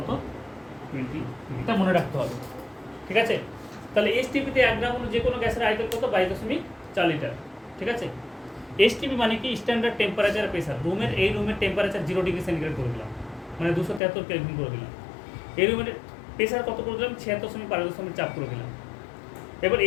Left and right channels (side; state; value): right; drops out; at 14.0 s